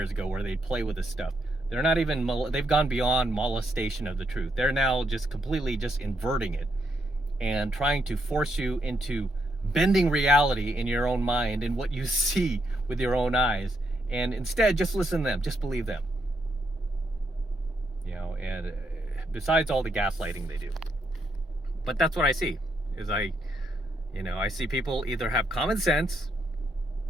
ago, where they play with this stuff. They're not even, they've gone beyond molestation of the truth. They're now just completely just inverting it and trying to force you into bending reality in your own mind and what you see with your own eyes. And instead, just listen to them, just believe them. And besides all the gaslighting they do. But that's what I see. I see people either have common sense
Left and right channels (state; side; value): normal; both; correlation 0.78